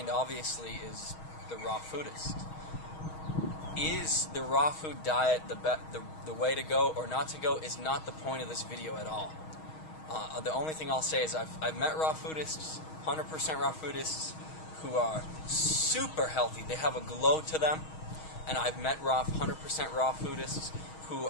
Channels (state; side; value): late; right; 6.3 ms